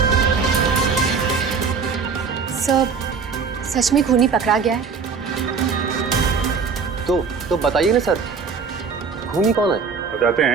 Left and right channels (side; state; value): left; quieter; 5.5 dB